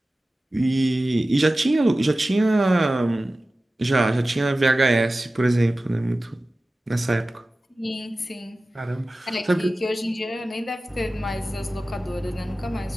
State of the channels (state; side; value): normal; both; correlation 0.96